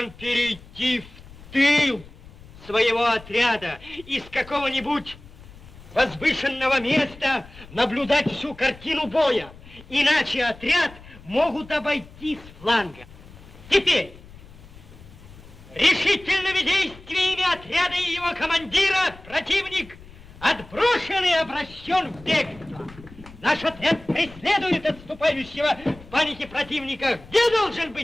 перейти в тыл своего отряда из какого-нибудь возвышенного места наблюдать всю картину боя. Иначе отряд могут обойти с фланга. Теперь решительными действиями отряда и его командира противник отброшен и обращен в бегство. Наш отряд преследует отступающего в панике противника. Где должен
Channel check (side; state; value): left; noise; rumble, 20 dB below the sound